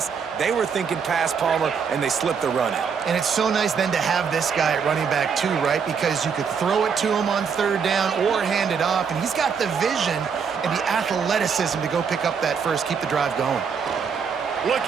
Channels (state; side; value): quieter; left; 6.3 dB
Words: They were thinking pass, Palmer, and they slipped the run in. And it's so nice then to have this guy at running back too, right? Because you could throw it to him on 3rd down or hand it off, and he's got the vision and the athleticism to go pick up that first, keep the drive going.